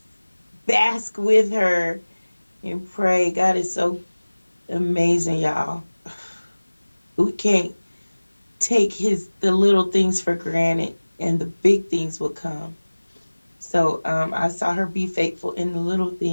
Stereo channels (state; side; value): inverted; both; correlation -1.00